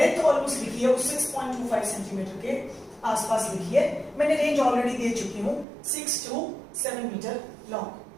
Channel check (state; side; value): drops out; left; at 5.7 s